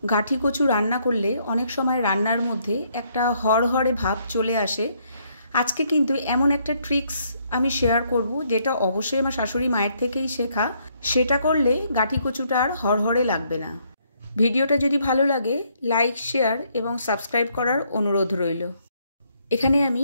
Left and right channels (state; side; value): inverted; both; correlation -0.71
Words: গাঠি কচু রান্না করলে অনেক সময় রান্নার মধ্যে একটা হড়হড়ে ভাব চলে আসে। আজকে কিন্তু এমন একটা ট্রিক্স আমি শেয়ার করব, যেটা অবশ্যই আমার শাশুড়ি মায়ের থেকেই শেখা। সেটা করলে গাঠি কচুটা আর হড়হড়ে লাগবে না। ভিডিওটা যদি ভালো লাগে লাইক, শেয়ার এবং সাবস্ক্রাইব করার অনুরোধ রইল। এখানে আমি